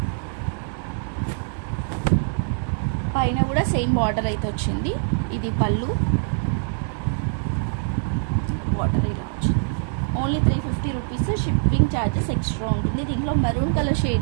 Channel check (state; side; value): silent; left; digital silence